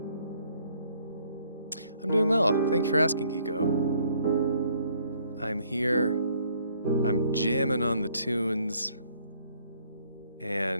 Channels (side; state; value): both; inverted; correlation -0.65